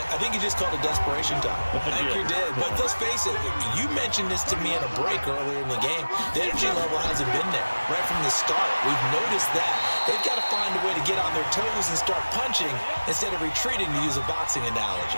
you just called it desperation time. I think you did. But let's face it, you mentioned this to me in a break earlier in the game. The energy level hasn't been there right from the start. We've noticed that. They've got to find a way to get on their toes and start punching instead of retreating, to use a boxing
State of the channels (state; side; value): inverted; both; correlation -1.00